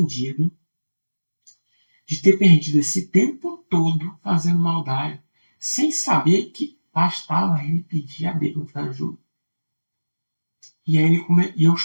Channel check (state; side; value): inverted; both; correlation -1.00